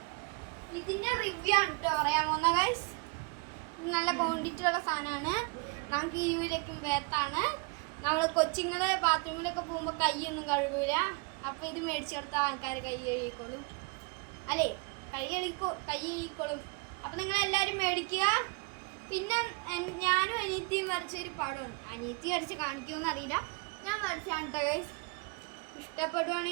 ഇതിൻ്റെ റിവ്യൂ ആണ് കേട്ടോ പറയാൻ പോകുന്ന ഗൈസ്. നല്ല ക്വാണ്ടിറ്റി ഉള്ള സാധനമാണ്. നമുക്ക് ഈ യൂരിക്കും വേർത്താണ്. നമ്മൾ കൊച്ചുങ്ങൾ ബാത്റൂമിലൊക്കെ പോകുമ്പോൾ കൈയൊന്നും കഴുകൂല. അപ്പോൾ ഇത് മേടിച്ചു കൊടുത്ത ആൾക്കാർ കൈ കഴുകിക്കോളും, അല്ലേ? കൈ കഴുകിക്കോളും. അപ്പോൾ നിങ്ങളെല്ലാവരും മേടിക്കുക. പിന്നെ ഞാനും അനിയത്തിയും വരച്ചൊരു പടമാണ്. അനിയത്തി വരച്ച് കാണിക്കുമെന്ന് അറിയില്ല, ഞാൻ വരച്ചാണ് കേട്ടോ ഗൈസ്.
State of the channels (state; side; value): quieter; left; 29.7 dB